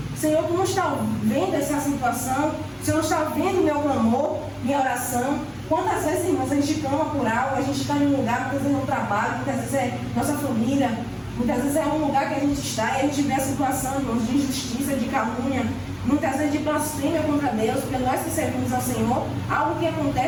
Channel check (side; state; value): both; identical; correlation 1.00